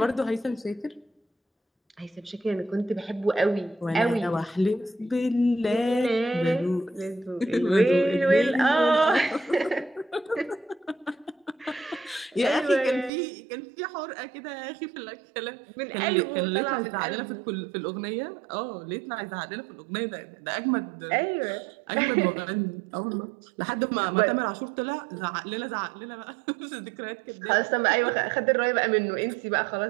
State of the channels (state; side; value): drops out; left; at 13.1 s